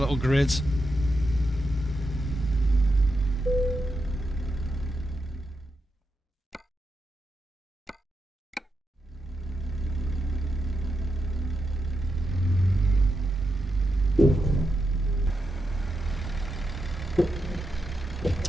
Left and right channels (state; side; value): normal; both; correlation 0.86